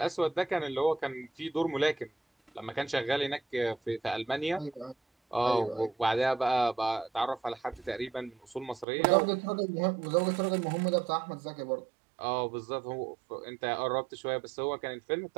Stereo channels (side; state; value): left; drops out; at 8.8 s